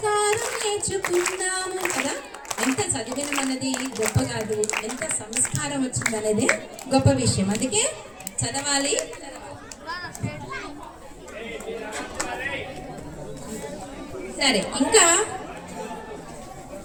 నేర్చుకున్నాము కదా. ఎంత చదివినం అన్నది గొప్ప కాదు, ఎంత సంస్కారం వచ్చిందనేదే గొప్ప విషయం. అందుకే చదవాలి. సరే, ఇంకా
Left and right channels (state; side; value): identical; both; correlation 1.00